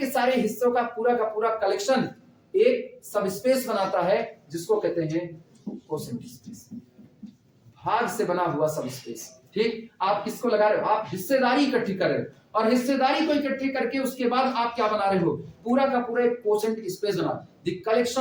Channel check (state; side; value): identical; both; correlation 1.00